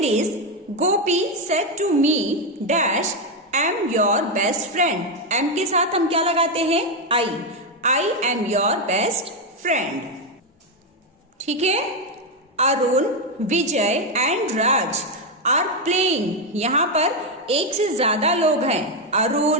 is Gopi said to me dash am your best friend. Am के साथ हम क्या लगाते हैं, I am your best friend. ठीक है। Arun, Vijay and Raj are playing. यहाँ पर एक से ज्यादा लोग हैं,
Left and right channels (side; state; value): both; normal; correlation 0.06